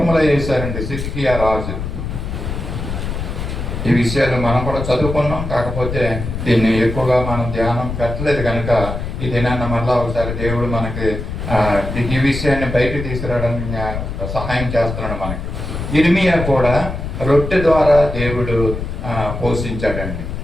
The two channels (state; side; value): noise; left; rumble, 5 dB below the sound